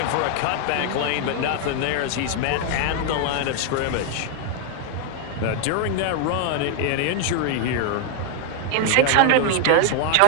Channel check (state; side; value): different; both; correlation 0.00